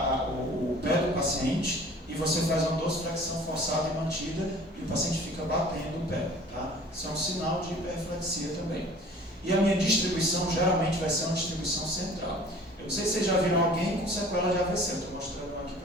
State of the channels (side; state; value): both; normal; correlation 0.48